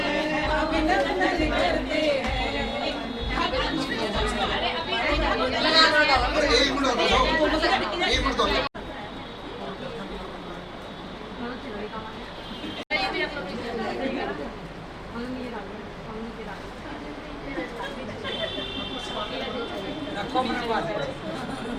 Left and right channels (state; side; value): identical; both; correlation 1.00